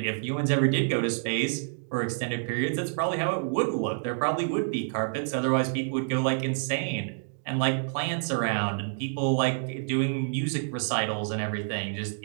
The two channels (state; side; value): silent; left; digital silence